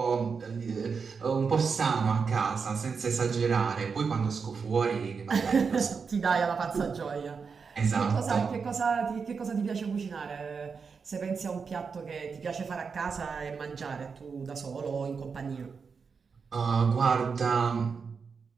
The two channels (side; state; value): left; quieter; 5.5 dB